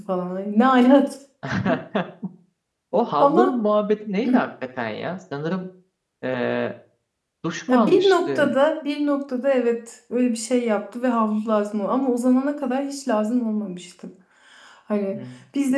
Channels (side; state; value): both; identical; correlation 1.00